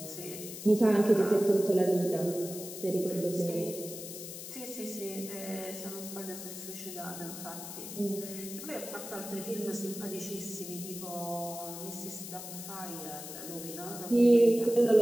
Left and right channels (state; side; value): noise; left; hiss, 10 dB below the sound